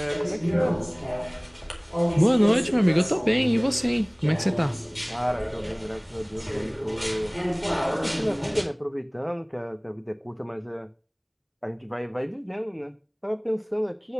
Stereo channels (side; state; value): both; identical; correlation 1.00